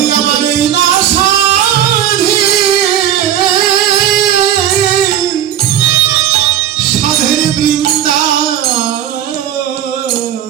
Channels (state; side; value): quieter; left; 10.7 dB